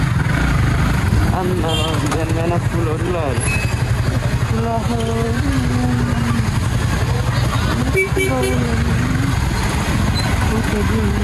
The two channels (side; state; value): both; identical; correlation 1.00